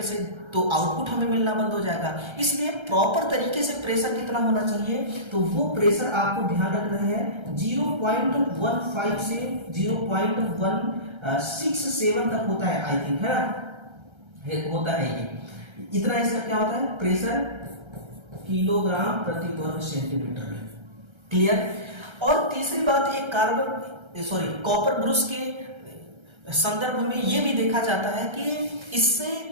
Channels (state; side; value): late; left; 1.3 ms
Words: से, तो आउटपुट हमें मिलना बंद हो जाएगा। इसलिए प्रॉपर तरीके से प्रेशर कितना होना चाहिए, तो वो प्रेशर आपको ध्यान रखना है 0.15 से 0.167 तक होता है, आई थिंक, है ना, होता है ये इतना। इसका क्या होता है प्रेशर किलोग्राम प्रति वर्ग सेंटीमीटर में। क्लियर। और तीसरी बात, एक कॉपर ब्रश के संदर्भ में ये भी देखा जाता है कि इससे